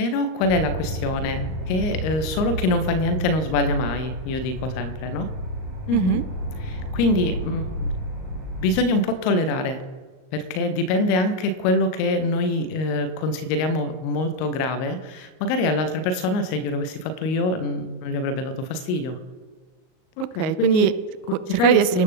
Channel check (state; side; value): late; right; 38 ms